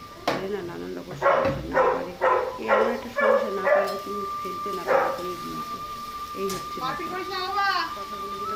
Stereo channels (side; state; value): both; identical; correlation 1.00